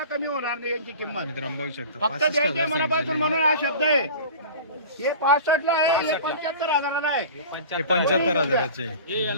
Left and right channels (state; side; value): inverted; both; correlation -0.38